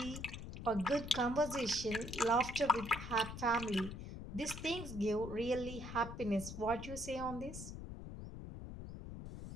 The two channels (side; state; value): left; noise; rumble, 9 dB below the sound